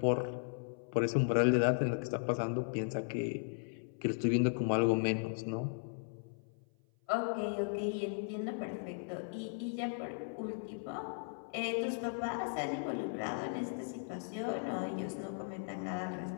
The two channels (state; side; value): silent; right; 53 dB below the other